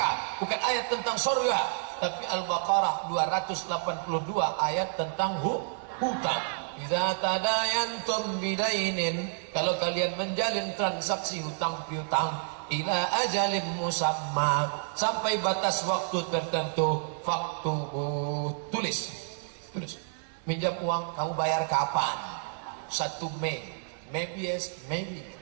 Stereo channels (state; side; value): silent; left; 58 dB below the other